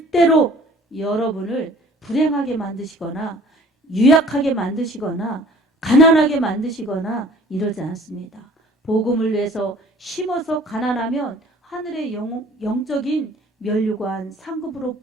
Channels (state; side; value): normal; both; correlation 0.51